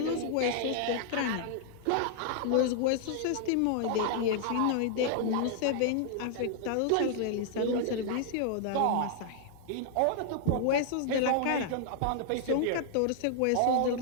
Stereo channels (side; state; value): both; different; correlation -0.01